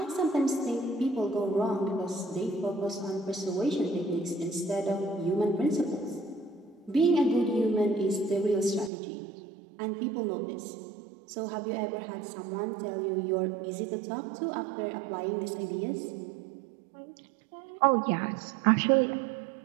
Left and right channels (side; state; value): left; drops out; at 8.9 s